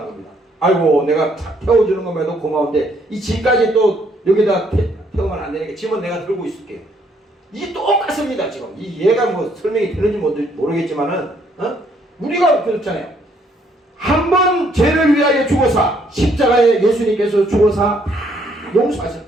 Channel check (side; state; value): both; normal; correlation 0.68